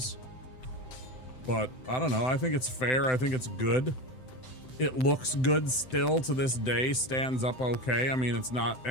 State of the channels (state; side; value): late; right; 7.8 ms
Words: But, I don't know, I think it's fair, I think it's good. It looks good still to this day, stands up okay. I mean, it's not